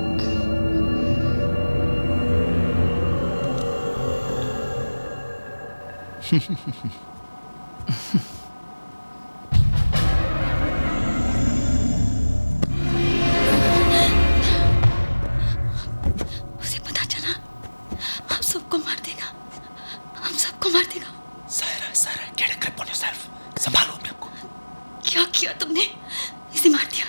उसे पता चला हम सबको मार देगा, हम सबको मार देगा। Saira, get a grip on yourself. संभालो अपने आप को। क्या किया तुमने? इसे मार दिया।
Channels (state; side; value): inverted; both; correlation -1.00